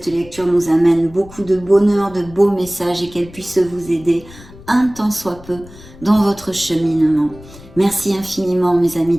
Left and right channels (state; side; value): noise; left; rumble, 20 dB below the sound